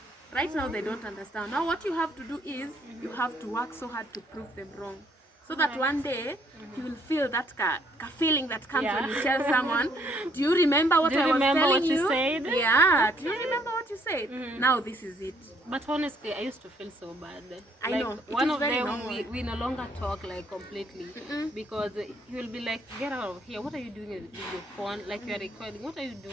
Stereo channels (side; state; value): both; normal; correlation 0.67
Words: Right now they don't understand. Now what you have to do is you have to work so hard to prove them wrong. So that one day you will feel that feeling that comes when you tell someone, do you remember what I was telling you? Said? Yeah, do you remember what you said? Now this is it. But honestly, I used to feel so bad. I like, know. One of them, we no longer talk like completely because he will be like, get out of here. What are you doing with your phone? Like you are recording. What are you